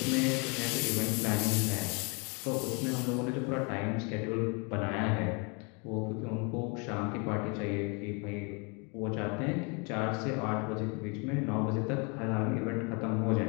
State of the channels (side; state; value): right; quieter; 32.9 dB